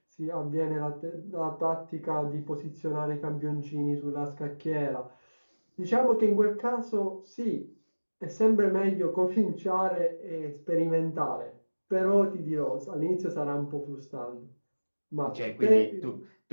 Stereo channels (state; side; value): inverted; both; correlation -1.00